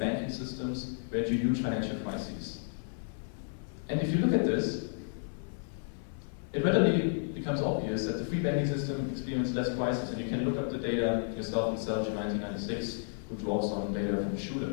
systems, where you had huge financial crises. And if you look at this, it readily becomes obvious that the free banking system experienced less crisis, and you can look up the data yourself in Sergio 1996, who draws on data from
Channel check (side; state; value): right; silent; 56 dB below the other